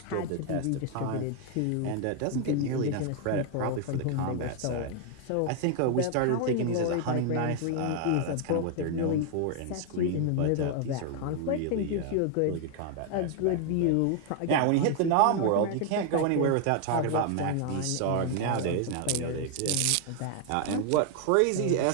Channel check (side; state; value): both; different; correlation 0.00